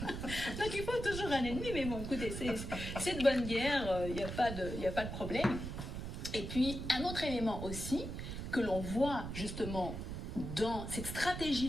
Donc il faut toujours un ennemi, mais bon, écoutez, c'est de bonne guerre, il n'y a pas de problème. Et puis, un autre élément aussi, que l'on voit justement dans cette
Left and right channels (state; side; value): noise; right; rumble, 6 dB below the sound